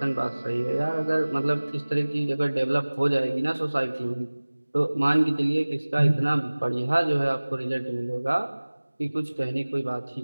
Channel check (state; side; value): inverted; both; correlation -1.00